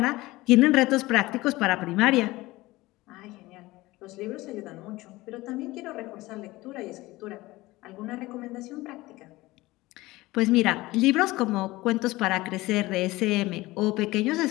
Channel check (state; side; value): quieter; right; 19.5 dB